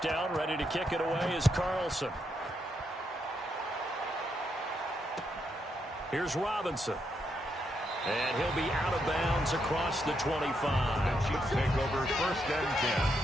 ready to kick it away is Carlson. Here's Robinson. And he'll be out of bounds across the 25. The Chiefs take over 1st and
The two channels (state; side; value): normal; both; correlation 0.79